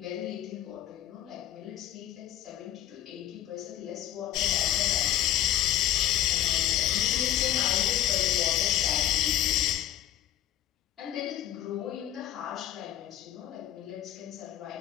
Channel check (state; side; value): quieter; right; 12.0 dB